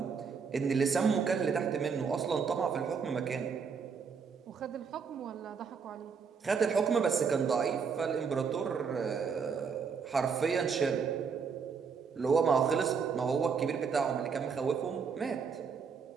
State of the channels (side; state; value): left; quieter; 6.0 dB